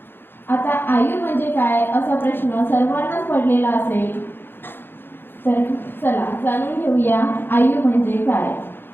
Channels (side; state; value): right; late; 0.10 ms